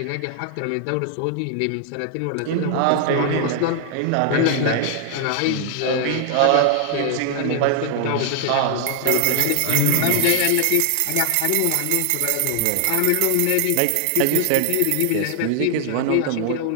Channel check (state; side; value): different; both; correlation 0.00